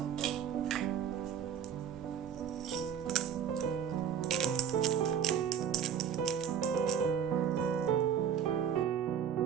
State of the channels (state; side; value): quieter; left; 8.2 dB